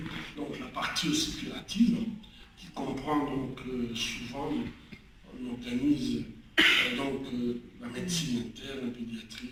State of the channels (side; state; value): both; identical; correlation 1.00